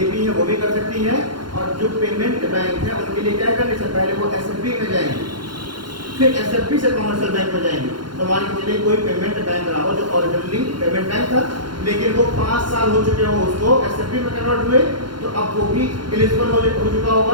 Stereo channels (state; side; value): late; left; 0.72 ms